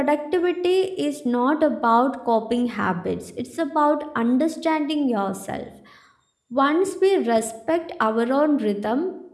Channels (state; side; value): identical; both; correlation 1.00